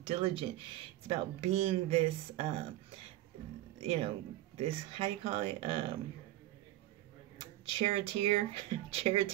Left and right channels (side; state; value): left; quieter; 15.4 dB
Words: diligent. It's about being this, you know, this, how do you call it? Charioteer.